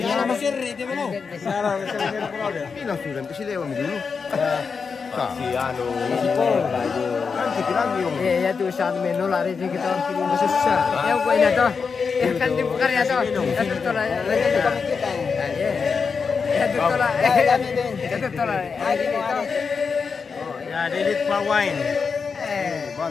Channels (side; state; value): right; quieter; 5.4 dB